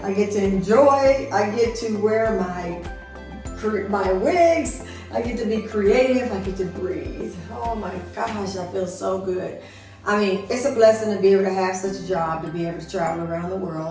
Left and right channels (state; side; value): identical; both; correlation 1.00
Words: I get to enjoy, I get to wear my wigs, I get to be creative, I get to breathe. Oh my gosh, I feel so good. I mean, it's a blessing to be able to have such a job, to be able to travel around the